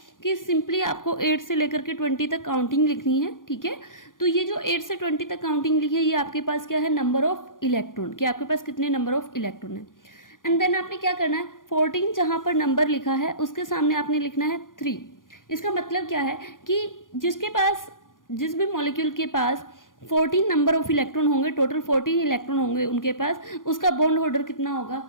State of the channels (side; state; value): right; late; 0.89 ms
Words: कि सिंपली आपको 8 से लेकर के 20 तक काउंटिंग लिखनी है, ठीक है। तो ये जो 8 से 20 तक काउंटिंग लिखी है, ये आपके पास क्या है, नंबर ऑफ इलेक्ट्रॉन, कि आपके पास कितने नंबर ऑफ इलेक्ट्रॉन है। एंड देन आपने क्या करना है, 14 जहां पर नंबर लिखा है उसके सामने आपने लिखना है 3। इसका मतलब क्या है कि जिस भी मॉलिक्यूल के पास 14 नंबर ऑफ इलेक्ट्रॉन होंगे, टोटल 14 इलेक्ट्रॉन होंगे उनके पास, उसका बॉन्ड ऑर्डर कितना होगा,